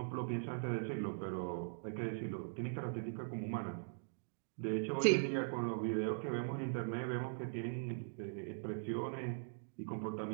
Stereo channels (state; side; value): silent; left; digital silence